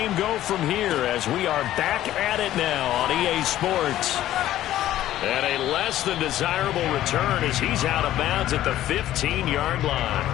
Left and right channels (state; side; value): quieter; right; 13.4 dB